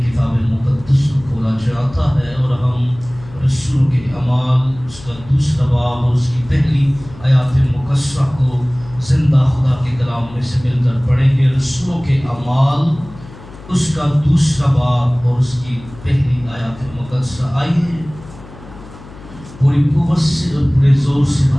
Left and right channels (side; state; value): left; noise; hum, 18 dB below the sound